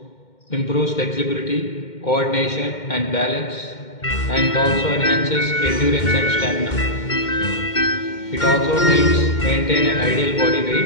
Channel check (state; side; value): late; right; 2.1 ms